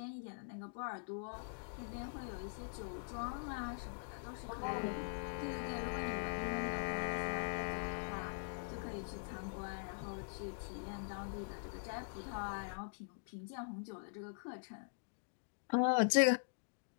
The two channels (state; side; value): silent; right; digital silence